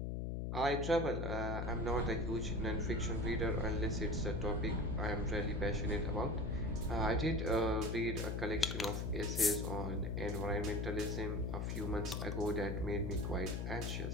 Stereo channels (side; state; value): left; noise; hum, 1 dB below the sound